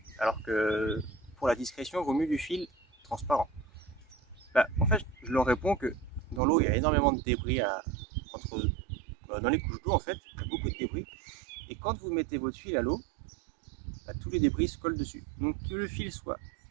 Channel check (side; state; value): left; drops out; at 6.4 s